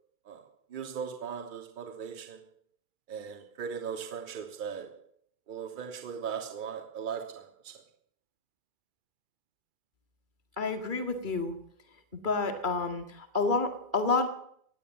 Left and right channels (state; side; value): late; left; 2.3 ms